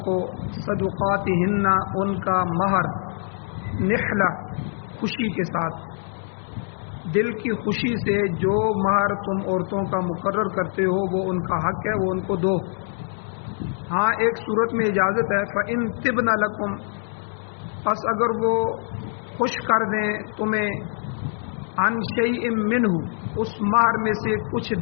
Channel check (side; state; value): right; silent; digital silence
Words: کو صدقاتہن ان کا مہر نحلہ خوشی کے ساتھ، دل کی خوشی سے جو مہر تم عورتوں کا مقرر کرتے ہو وہ ان کا حق ہے، وہ ان کو دو۔ ہاں ایک صورت میں اجازت ہے، فَإِن طِبْنَ لَكُمْ، پس اگر وہ خوش کر دیں تمہیں عن شیء منہ، اس مہر میں سے کچھ